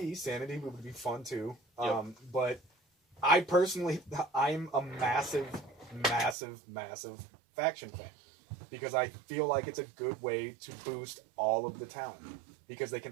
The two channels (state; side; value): drops out; left; at 6.4 s